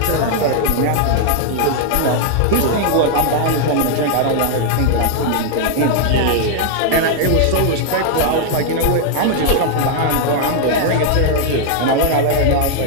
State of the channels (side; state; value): both; different; correlation 0.00